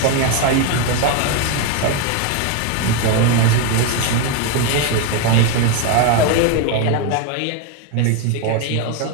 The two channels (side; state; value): both; different; correlation 0.02